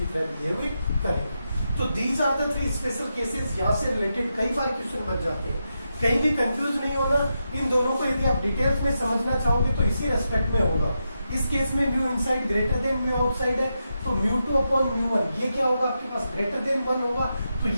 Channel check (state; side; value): inverted; both; correlation -0.86